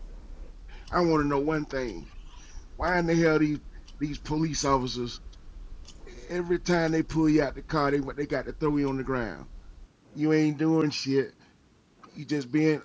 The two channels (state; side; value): identical; both; correlation 1.00